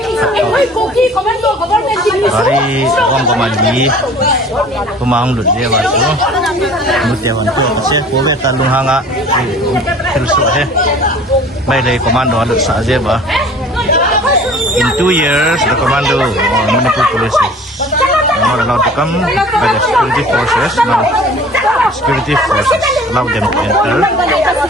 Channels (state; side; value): normal; both; correlation 0.47